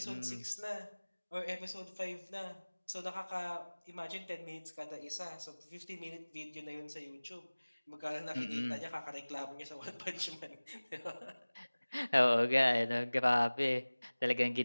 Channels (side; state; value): both; inverted; correlation -1.00